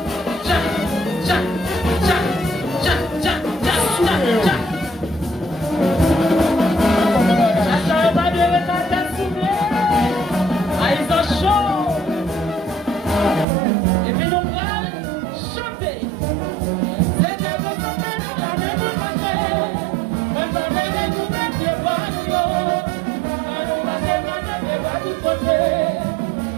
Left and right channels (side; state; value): left; drops out; at 13.5 s